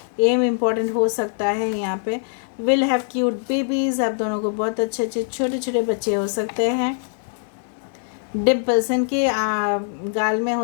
एम इम्पॉर्टेंट हो सकता है यहाँ पे। विल हैव क्यूट बेबीज़, आप दोनों को बहुत अच्छे अच्छे छोटे छोटे बच्चे हो सकते हैं। डिम्पल्स, इनके गाल में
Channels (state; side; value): silent; right; 63 dB below the other